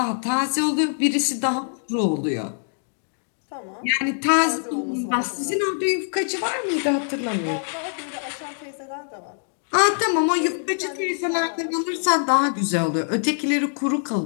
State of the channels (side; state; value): right; silent; digital silence